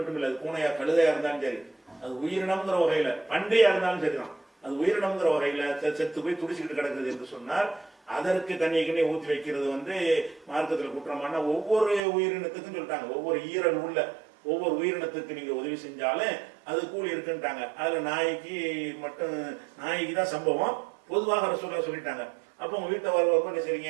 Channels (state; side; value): drops out; left; at 12.0 s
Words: இல்லை, அது பூனையா கழுதையா இருந்தாலும் சரி, அது உயிரினம்ங்கிற வகையில, பண்டையா இருந்தாலும் சரிதான், அது உயிரினம்ங்கிற வகையில செத்து போய் துடிச்சுக்கிட்டு கிடக்குது என்று சொன்னால் அதற்கு தண்ணியை ஊற்றி வைக்கிறது வந்து மார்க்கத்தில் குற்றமான. ஒவ்வொரு உயிரினத்துக்கும் சொல்லிட்டாங்க, ஒவ்வொரு ஈரல் உள்ள ஒவ்வொரு உயிரினத்துக்கு நீங்க உதவி செஞ்சாலும் அது கூலி இருக்குன்ட்டாங்க. அதுல நாய்க்கு மட்டும், நாய்க்கு தான் சம்பவம், பொதுவாக ரசூலுல்லாஹ் சொல்லிட்டாங்க. அப்போ உங்க வீட்டை வரவங்க என்ன